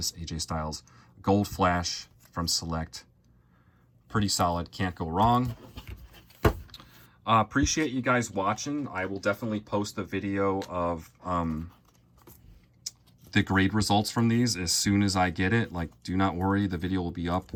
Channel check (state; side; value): identical; both; correlation 1.00